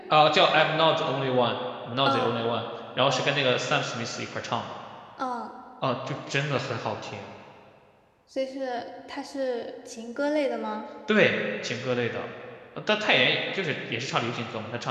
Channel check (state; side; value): identical; both; correlation 1.00